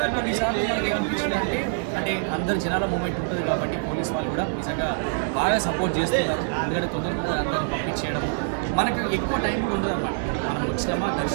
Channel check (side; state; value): left; silent; digital silence